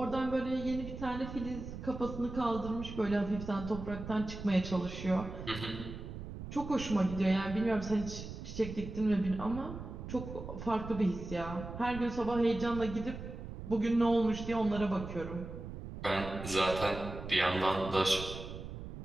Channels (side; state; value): right; noise; rumble, 9 dB below the sound